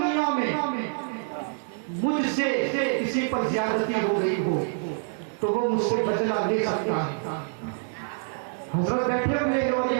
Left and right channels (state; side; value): silent; left; 61 dB below the other